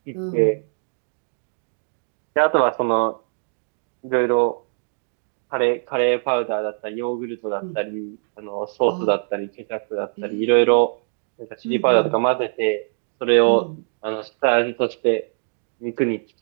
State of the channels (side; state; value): left; silent; digital silence